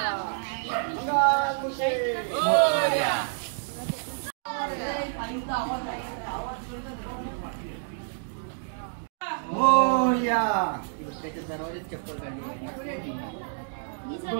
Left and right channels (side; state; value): left; silent; digital silence